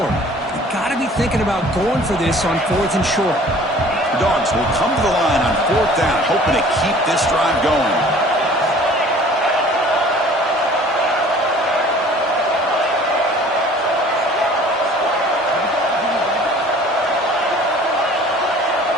You got to be thinking about going for this on 4th and short. The Dogs will come to the line on 4th down, hoping to keep this drive going.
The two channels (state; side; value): normal; both; correlation 0.50